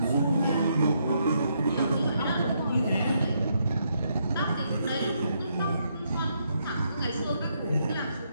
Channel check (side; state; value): both; inverted; correlation -0.76